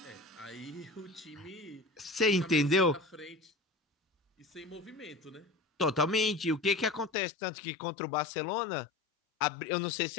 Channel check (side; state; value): right; drops out; at 7.1 s